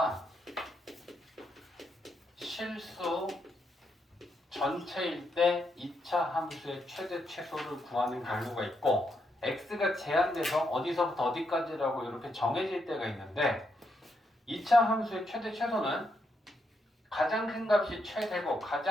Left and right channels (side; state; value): both; normal; correlation 0.80